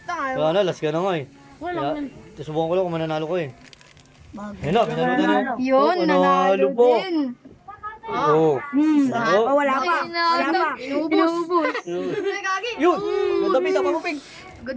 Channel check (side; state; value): both; identical; correlation 1.00